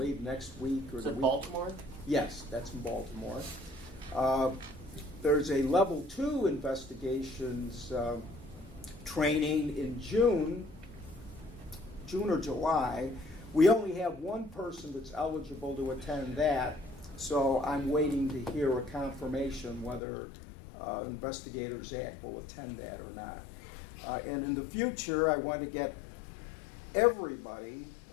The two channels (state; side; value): drops out; right; at 20.0 s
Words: next week or Is the it week. Baltimore? Yes, that's in Baltimore. There's a Level 2 investigations training in June or July. We only have one person that's eligible to attend that, so I'm waiting to hear a confirmation whether Investigators Act will attend that or not. And in the future, I want to get everybody,